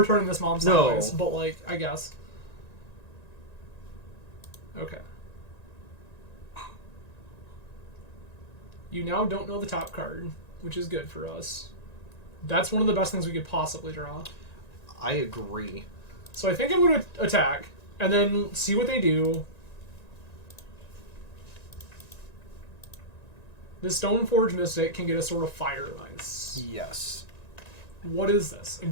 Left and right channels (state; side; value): late; right; 1.9 ms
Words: turning this mom No. sideways, but, like, I guess. Okay. You now don't know the top card, which is good for us. That's one of the best things we could possibly draw. I agree. So I think I'm going to attack, and then see what they do. This Stoneforge Mystic can get a sort of fire ice. Yes. What is this?